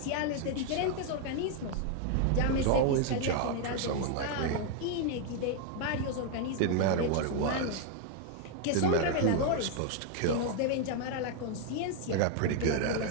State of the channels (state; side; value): different; both; correlation 0.00